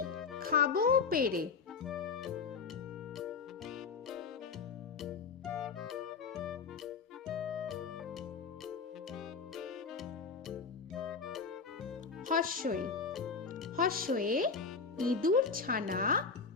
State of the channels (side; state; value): right; quieter; 5.1 dB